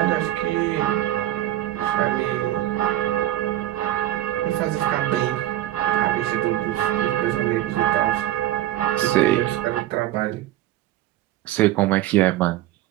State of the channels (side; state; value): left; quieter; 14.2 dB